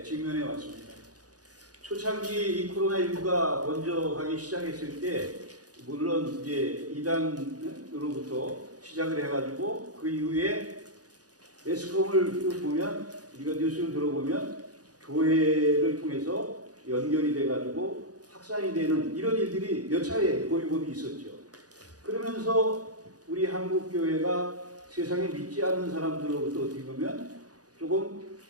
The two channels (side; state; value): left; late; 0.68 ms